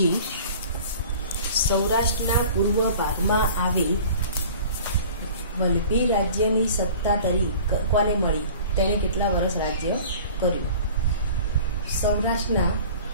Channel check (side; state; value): both; inverted; correlation -0.44